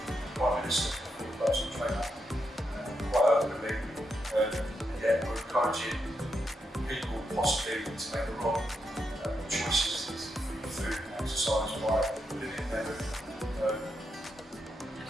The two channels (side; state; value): both; normal; correlation 0.83